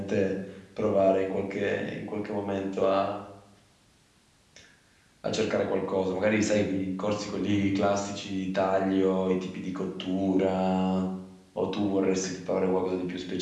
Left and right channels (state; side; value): identical; both; correlation 1.00